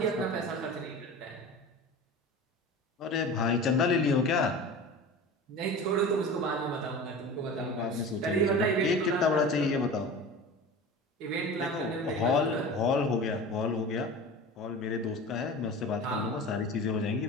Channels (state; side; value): normal; both; correlation 0.34